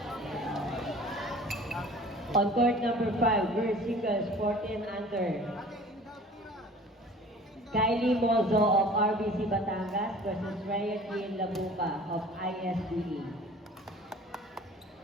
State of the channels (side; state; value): both; normal; correlation 0.46